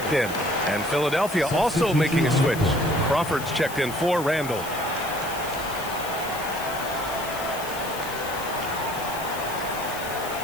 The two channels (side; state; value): left; noise; hiss, 12 dB below the sound